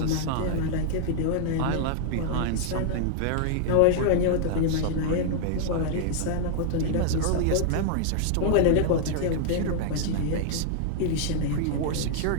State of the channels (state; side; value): different; both; correlation -0.01